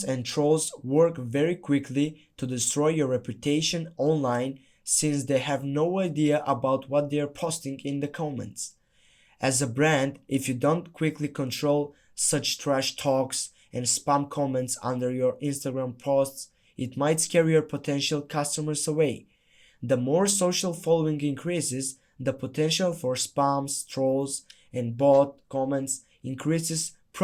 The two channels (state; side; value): identical; both; correlation 1.00